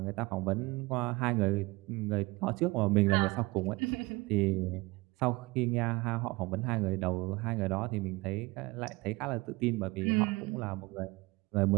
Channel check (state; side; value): quieter; left; 23.1 dB